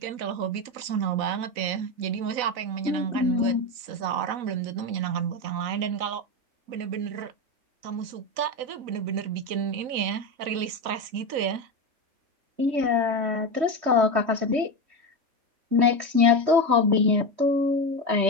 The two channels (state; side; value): late; left; 4.0 ms